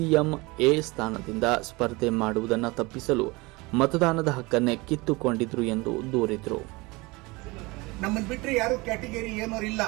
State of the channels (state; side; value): quieter; left; 24.0 dB